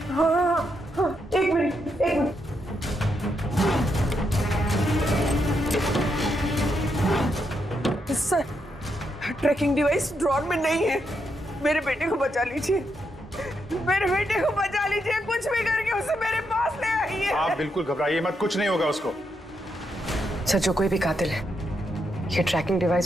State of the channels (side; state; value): both; normal; correlation 0.81